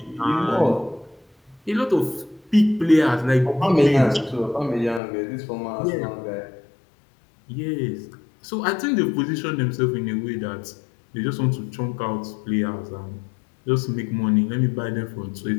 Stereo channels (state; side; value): drops out; right; at 5.0 s